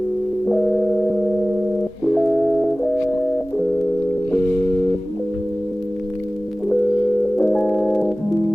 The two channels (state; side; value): normal; both; correlation 0.98